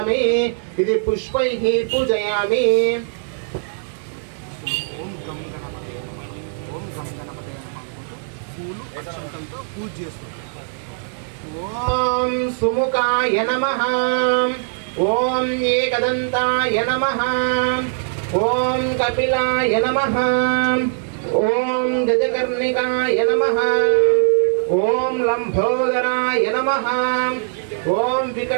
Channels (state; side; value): silent; left; digital silence